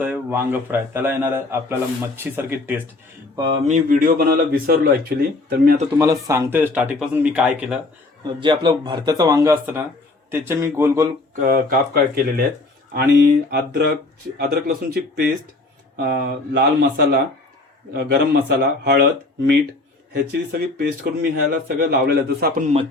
वांग फ्राय. त्याला येणार आहे आपल्याला मच्छीसारखी टेस्ट. मी व्हिडिओ बनवायला विसरलो ॲक्च्युली, तर मी आता तुम्हाला सांगतोय स्टार्टिंगपासून मी काय केलं. जे आपलं भरत्याचं वांग असतं ना, त्याचे मी गोल गोल काप केलेले आहेत आणि अद्रक लसूणची पेस्ट, लाल मसाला, गरम मसाला, हळद, मीठ ह्याची सगळी पेस्ट करून मी ह्याला सगळं लावलेलं आहे. जसं आपण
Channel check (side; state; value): right; quieter; 3.1 dB